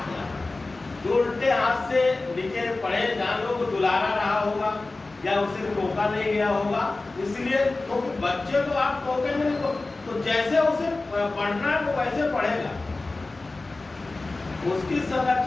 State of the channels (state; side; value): quieter; right; 3.3 dB